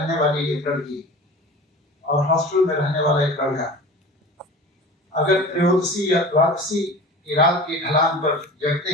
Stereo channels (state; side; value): normal; both; correlation 0.37